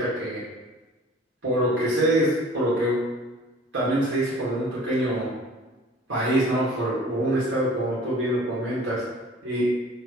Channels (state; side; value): normal; both; correlation 0.48